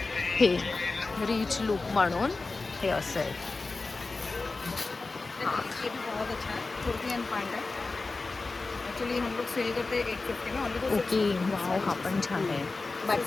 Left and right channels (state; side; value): quieter; right; 3.7 dB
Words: हे रिच लुक म्हणून हे असं आहे. ये भी बहुत अच्छा है, कुर्ती एंड पैंट है. एक्चुअली हम लोग सेल करते हैं 850 में ऑनली. ओके वाव, हा पण छान आहे,